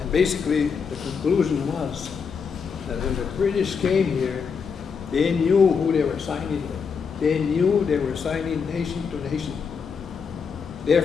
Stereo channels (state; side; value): quieter; right; 5.9 dB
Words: And basically, the conclusion was that when the British came here, they knew who they were signing with. They knew they were signing nation to nation.